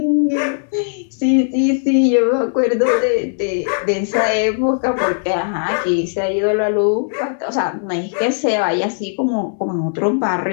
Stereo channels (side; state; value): right; silent; digital silence